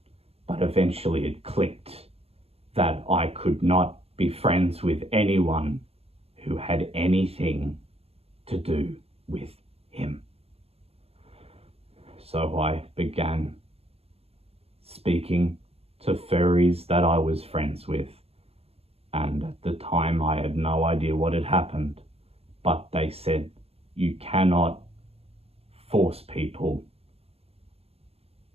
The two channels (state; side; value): late; left; 0.29 ms